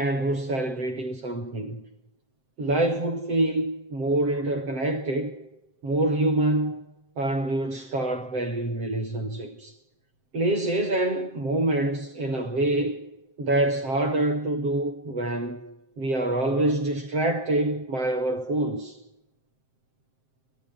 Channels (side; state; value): left; late; 7.7 ms